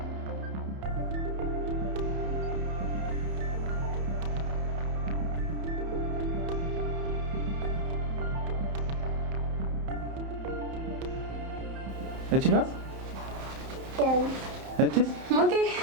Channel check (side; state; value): left; late; 31 ms